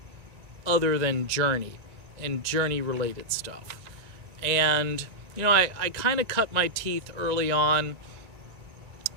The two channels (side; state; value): left; late; 1.9 ms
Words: other than Journey and Journey-related stuff? And, you know, I kind of cut my teeth early on